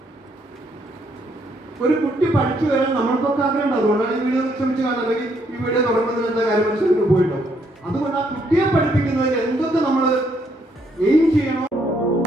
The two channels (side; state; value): both; normal; correlation 0.72